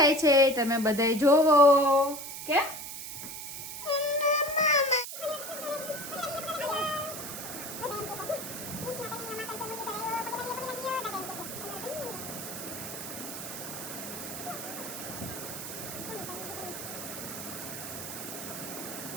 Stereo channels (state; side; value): noise; right; hiss, 8 dB below the sound